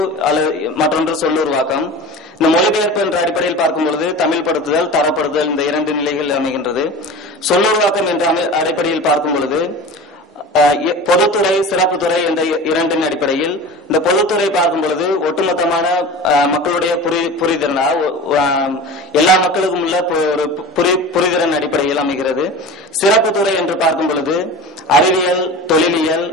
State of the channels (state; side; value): normal; both; correlation 0.34